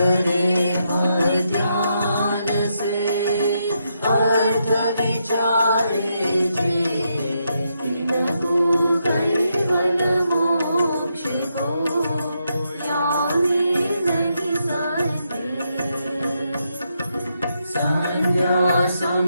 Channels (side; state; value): both; inverted; correlation -0.81